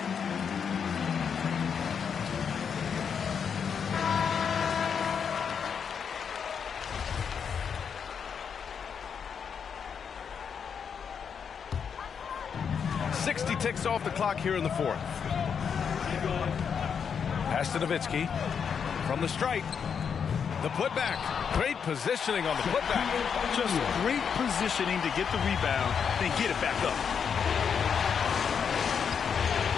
Ticks off the clock here in the fourth. Pass to Nowitzki from the stripe. The putback. Great positioning on the putback. Just great positioning to get the rebound, then get it back up.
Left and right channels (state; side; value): quieter; right; 6.9 dB